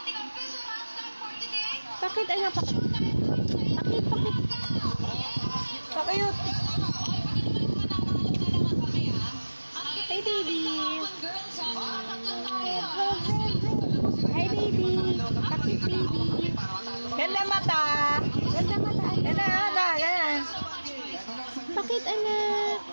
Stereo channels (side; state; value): both; inverted; correlation -1.00